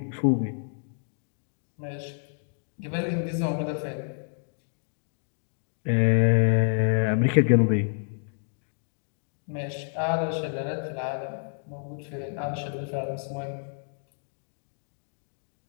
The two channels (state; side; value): silent; right; digital silence